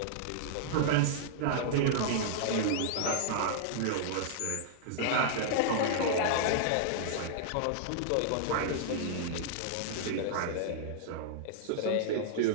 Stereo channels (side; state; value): both; different; correlation -0.01